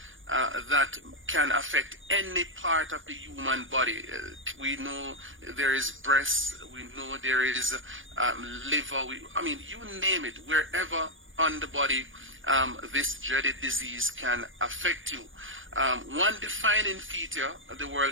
that can affect any part of the human body. We know there is breast, we know there is liver, you name it, wherever on the body this dreaded disease can affect you. One defining feature the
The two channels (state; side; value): late; left; 0.57 ms